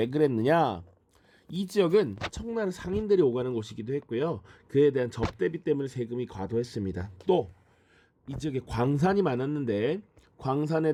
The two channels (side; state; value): both; identical; correlation 1.00